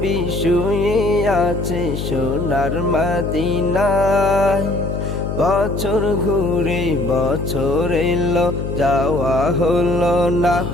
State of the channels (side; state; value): left; noise; hum, 4 dB below the sound